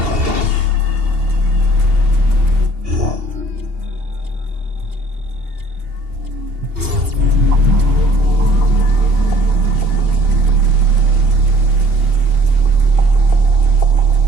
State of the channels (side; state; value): left; late; 2.8 ms